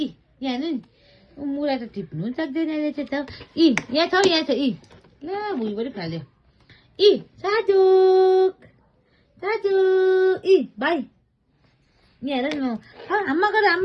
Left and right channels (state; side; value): identical; both; correlation 1.00